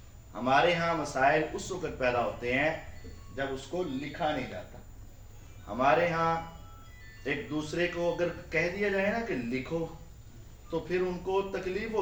ہمارے ہاں مسائل اس وقت پیدا ہوتے ہیں جب اس کو لکھا نہیں جاتا۔ ہمارے ہاں ایک دوسرے کو اگر کہہ دیا جائے نا کہ لکھو تو پھر ان کو تکلیف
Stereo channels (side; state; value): both; identical; correlation 1.00